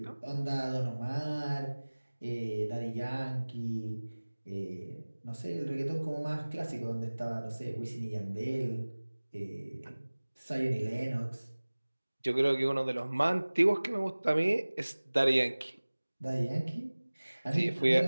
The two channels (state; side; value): inverted; both; correlation -1.00